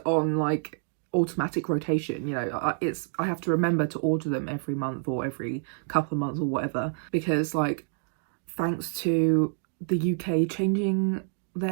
on like automatic rotation. You know, I have to remember to order them every month or every couple of months or whatever, because like thanks to the UK changing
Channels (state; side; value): silent; left; 60 dB below the other